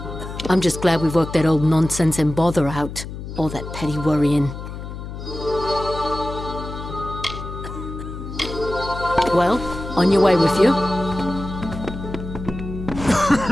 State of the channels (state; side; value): noise; left; hum, 9 dB below the sound